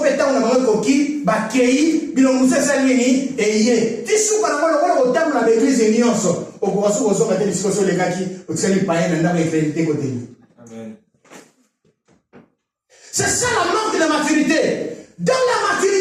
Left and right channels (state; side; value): identical; both; correlation 1.00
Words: peta on a mangé coquille, bakei, bilongousse salini, et yé. Tissou quand on a au l'église et nyonso. Au courant où on a des discussions les gars qui au tseli païen n'a pas crédité côté. Amen. C'est ça la manque de maturité. Dans la